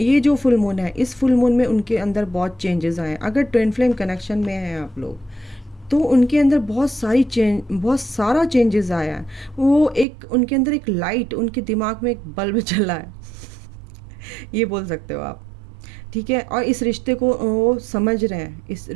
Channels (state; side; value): drops out; left; at 10.1 s